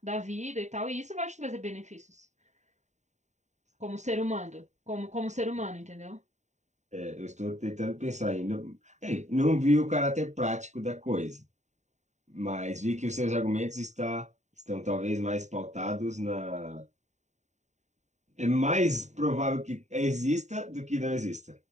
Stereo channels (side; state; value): left; late; 0.34 ms